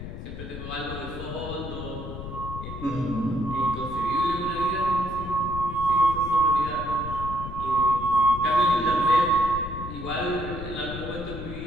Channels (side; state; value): left; noise; rumble, 9 dB below the sound